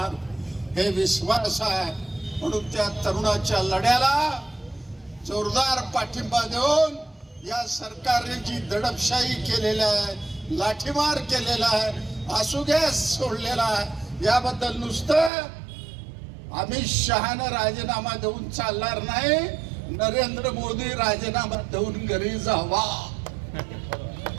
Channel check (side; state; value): left; drops out; at 15.3 s